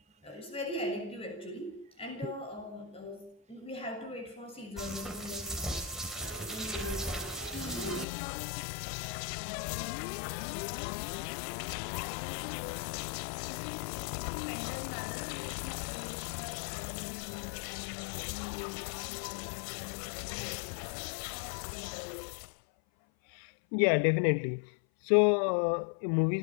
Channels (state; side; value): drops out; right; at 8.1 s